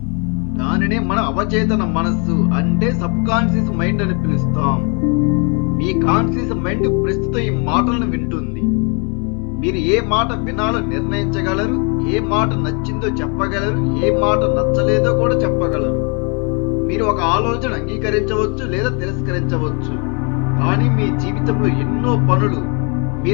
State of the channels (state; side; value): quieter; right; 35.2 dB